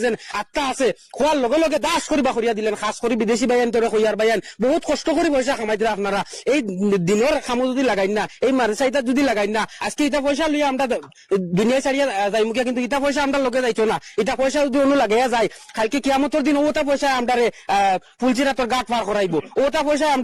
যেন আত্মা আছে, খোয়ার লগে লগে দাস করিবা করিয়া দিলেন। খাস করে বিদেশি বাইন তোরে কইয়ার বাইন বহুত কষ্ট করে পয়সা কামাই দিলে। আপনারা এই দিনের খামো যদি লাগাই না, এই মাদ্রাসা যদি লাগাই না, আজকে এটা পয়সা লইয়া আমরা দুনিয়া ছাড়িয়া যাই মুখিয়া, কিন্তু এটা পয়সা আমরা লগে যাইতো না। এটা পয়সা যদি অন্য লাগাইয়া যায় কালকে কিয়ামতের দিন ওটা পয়সা আমরারে ফুলচিরাতর গাট পার করাইবো, ওটা পয়সা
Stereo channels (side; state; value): both; identical; correlation 1.00